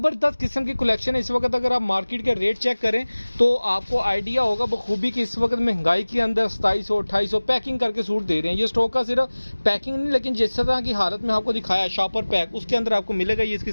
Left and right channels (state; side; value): inverted; both; correlation -1.00